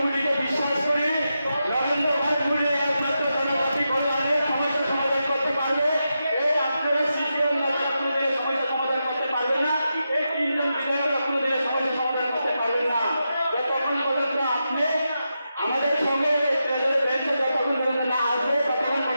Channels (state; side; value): inverted; both; correlation -0.88